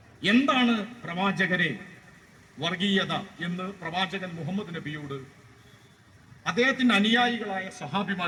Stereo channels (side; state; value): both; identical; correlation 1.00